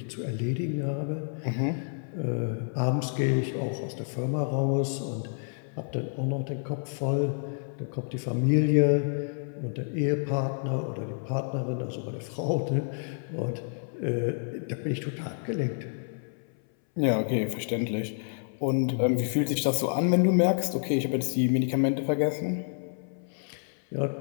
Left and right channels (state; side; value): silent; right; 59 dB below the other